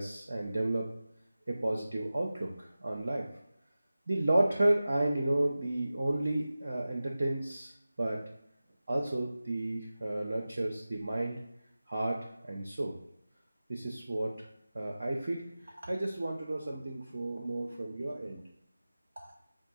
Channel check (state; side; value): inverted; both; correlation -0.96